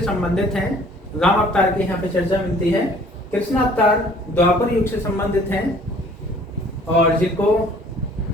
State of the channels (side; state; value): both; normal; correlation 0.54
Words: संबंधित हैं, राम अवतार की यहाँ पे चर्चा मिलती है। कृष्ण अवतार द्वापर युग से संबंधित हैं और जिनको